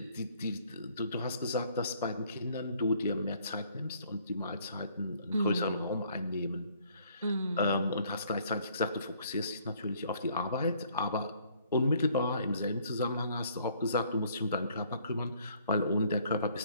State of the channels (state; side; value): inverted; both; correlation -0.62